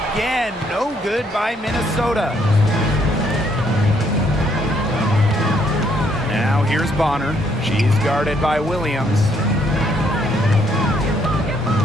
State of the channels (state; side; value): normal; both; correlation 0.70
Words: no good by Minnesota. Now here's Bonner. She's guarded by Williams.